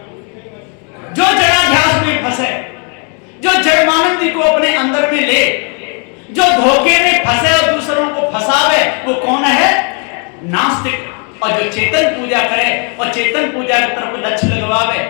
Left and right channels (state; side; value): quieter; right; 37.3 dB